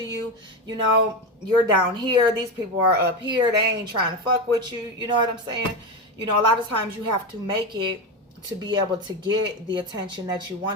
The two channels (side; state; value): both; normal; correlation 0.16